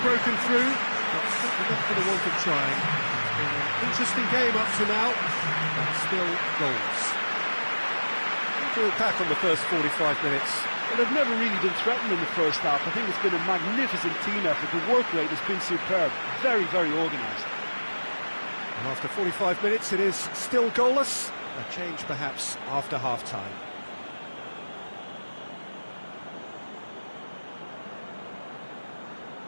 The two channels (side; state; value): both; inverted; correlation -1.00